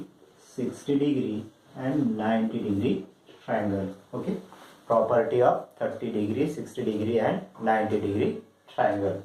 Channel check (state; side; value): identical; both; correlation 1.00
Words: 60 degree and 90 degree triangle. Okay, property of 30 degree, 60 degree and 90 degree triangle.